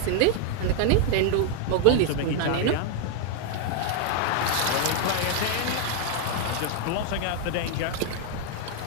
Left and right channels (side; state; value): both; different; correlation 0.00